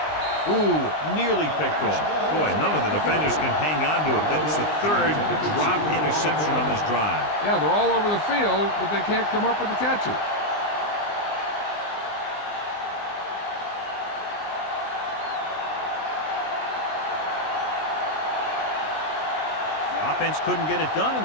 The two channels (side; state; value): right; late; 20 ms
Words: Ooh, nearly picked off. Boy, none of the defenders can hang on to it. That's the third drop interception on this drive. Yeah, they're all over the field, but they can't come up with the catches. Offense couldn't get it done,